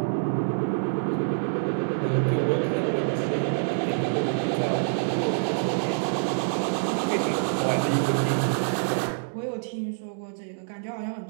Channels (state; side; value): silent; left; digital silence